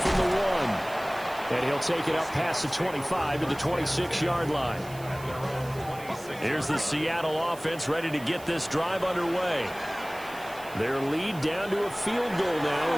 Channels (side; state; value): right; noise; hiss, 19 dB below the sound